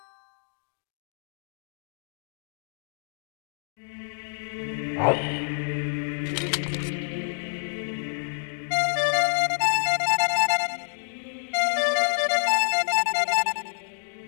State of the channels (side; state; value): right; silent; digital silence